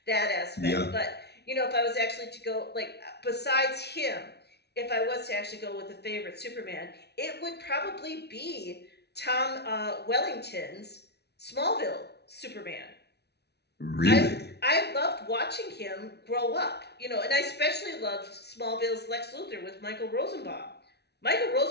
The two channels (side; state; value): right; late; 0.49 ms